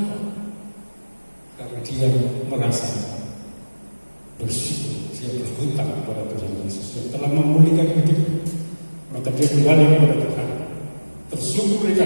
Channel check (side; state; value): both; inverted; correlation -1.00